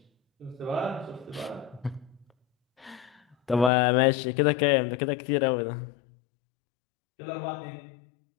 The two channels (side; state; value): right; drops out; at 3.7 s